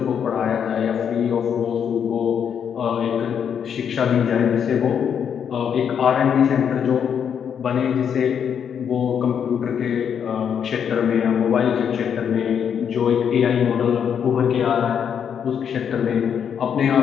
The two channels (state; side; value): quieter; right; 7.9 dB